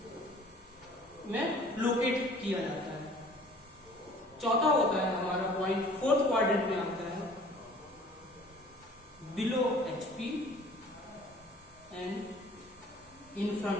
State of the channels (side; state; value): both; normal; correlation 0.51